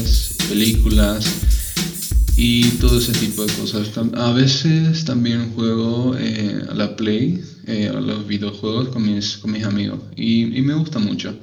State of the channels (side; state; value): both; identical; correlation 1.00